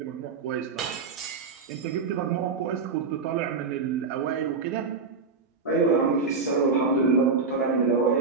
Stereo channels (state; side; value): quieter; left; 4.7 dB